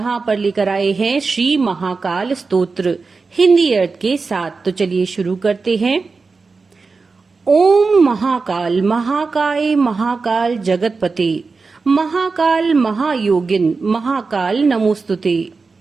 पर लेकर आए हैं श्री महाकाल स्तोत्र हिंदी अर्थ के साथ। तो चलिए शुरू करते हैं। ओम महाकाल महाकाय महाकाल जगतपते महाकाल महायोगिन महाकाल नमोस्तुते।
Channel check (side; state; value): left; quieter; 4.3 dB